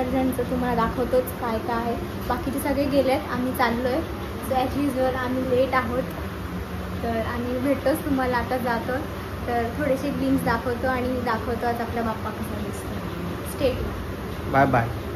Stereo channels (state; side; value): identical; both; correlation 1.00